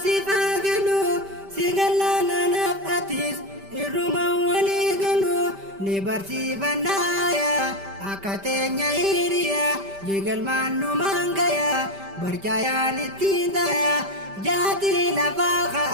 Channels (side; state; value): left; late; 5.1 ms